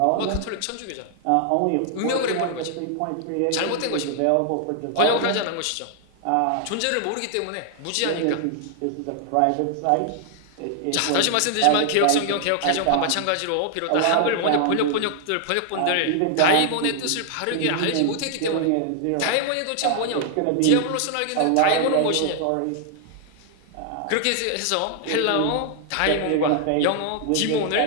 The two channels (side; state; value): both; different; correlation 0.00